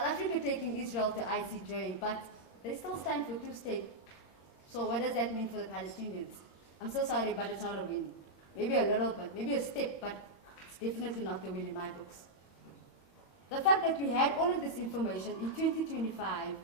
Africa taking Israel to ICJ, but they still stand for two-state. So what does that mean for the Palestinians? I'm so sorry, but it's not a win. Maybe a little bit, maybe a step, but it's definitely not the win in my books. The fact that we had all of this information in 2025,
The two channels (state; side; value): late; right; 22 ms